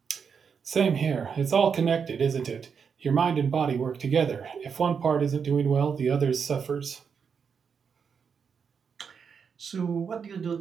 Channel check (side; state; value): left; quieter; 6.4 dB